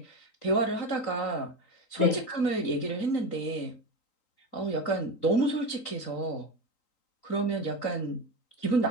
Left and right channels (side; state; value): right; late; 3.9 ms